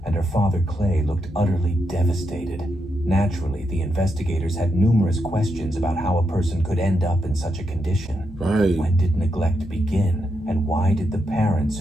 and her father Clay looked utterly devastated. Naturally, the investigators had numerous questions about how a person could end up in such a condition. Right. When did neglect begin? And why did the parents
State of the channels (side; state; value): both; normal; correlation 0.83